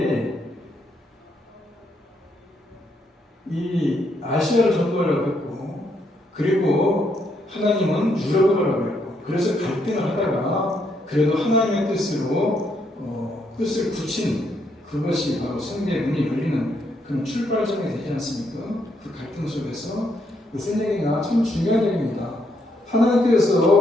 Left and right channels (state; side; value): normal; both; correlation 0.75